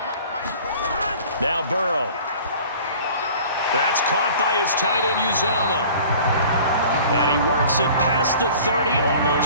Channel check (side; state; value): both; inverted; correlation -0.46